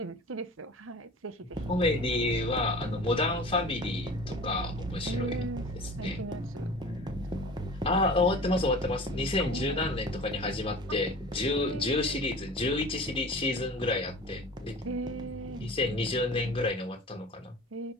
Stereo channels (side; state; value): both; normal; correlation 0.40